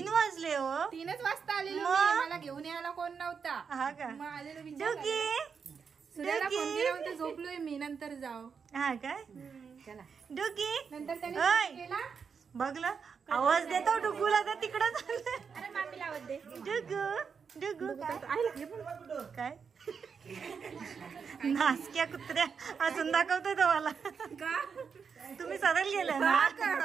वाजले हो. 3च वाजता आलेलो मी. मला घेऊन यायला कोण नव्हता. हा का? मग आलेलो डुगी सूर्याला फोन केला होता, झोपलोय मी, नंतर जाऊ. हा काय? चला. डुगी नंतर त्याने ओय. फोन केला. बघलं आवाज देतो डुगूला तर तिकडं चाललं. अरे मामीला आवाज दे. डुगू डुगू काय नासक्या कुत्र्या अजून दाखवतोय तुम्हाला. तुम्ही सरळ गेलाय ना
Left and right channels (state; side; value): quieter; left; 6.1 dB